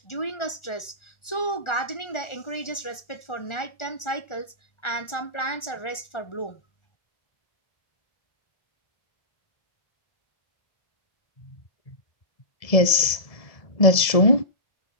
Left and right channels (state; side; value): late; right; 1.4 ms